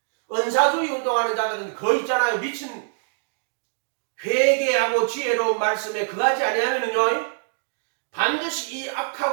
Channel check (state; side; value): silent; left; digital silence